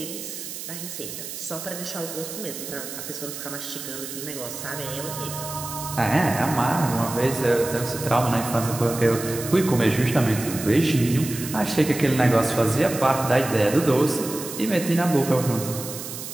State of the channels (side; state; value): right; noise; hiss, 9 dB below the sound